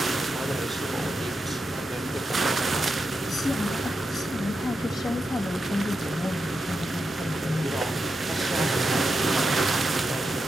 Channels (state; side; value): normal; both; correlation 0.87